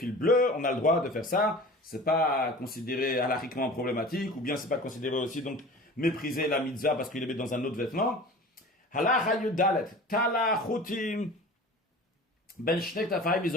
bleus, on a le droit de faire ça, c'est pas considéré halakhiquement problématique, ou bien c'est pas considéré aussi donc mépriser la mitzvah parce qu'il les met dans un autre vêtement. Halacha yudalet, tala chutim, ben shnek tafayim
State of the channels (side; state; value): both; normal; correlation 0.39